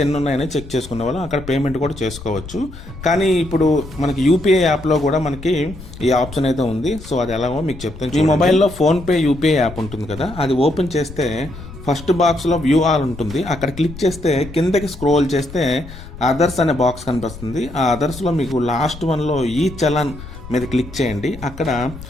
ఎన్ని ఉన్నాయని చెక్ చేసుకునే వాళ్ళం, అక్కడ పేమెంట్ కూడా చేసుకోవచ్చు. కానీ ఇప్పుడు మనకి యూపీఐ యాప్లో కూడా మనకి ఈ ఆప్షన్ అయితే ఉంది. సో అది ఎలాగో మీకు చెప్తాను. మీ మొబైల్లో ఫోన్పే యూపీఐ యాప్ ఉంటుంది కదా, అది ఓపెన్ చేస్తే ఫస్ట్ బాక్స్లో వ్యూ ఆల్ ఉంటుంది. అక్కడ క్లిక్ చేస్తే కిందకి స్క్రోల్ చేస్తే అదర్స్ అనే బాక్స్ కనిపిస్తుంది. ఆ అదర్స్లో మీకు లాస్ట్ వన్లో ఈ చలాన్ మీద క్లిక్ చేయండి. అక్కడ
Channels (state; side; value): noise; left; rumble, 14 dB below the sound